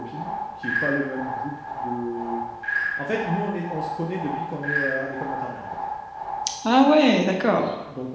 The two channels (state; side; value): identical; both; correlation 1.00